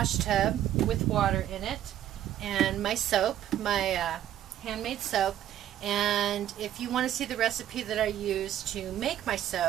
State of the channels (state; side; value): quieter; left; 11.7 dB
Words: tub with water in it and my soap, my handmade soap, and if you want to see the recipe that I use to make my